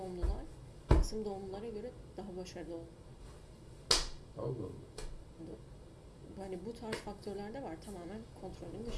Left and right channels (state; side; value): identical; both; correlation 1.00